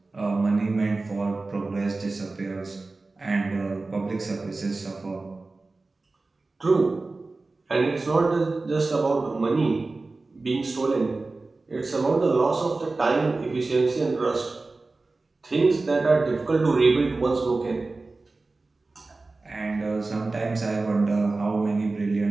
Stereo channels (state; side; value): quieter; left; 3.5 dB